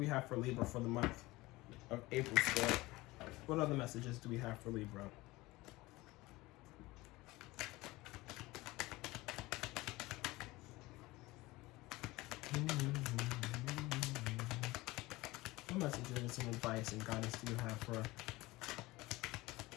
have for Libra for the month of April still. What other messages do we have for Libra? What messages and advice and guidance do you have for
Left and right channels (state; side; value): quieter; right; 20.4 dB